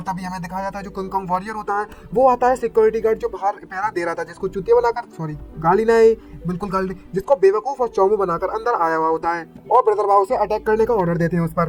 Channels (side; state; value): both; identical; correlation 1.00